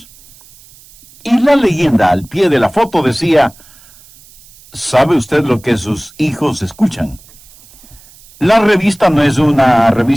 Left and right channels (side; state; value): right; noise; hiss, 25 dB below the sound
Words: Y la leyenda al pie de la foto decía: ¿sabe usted lo que sus hijos escuchan? La revista no es una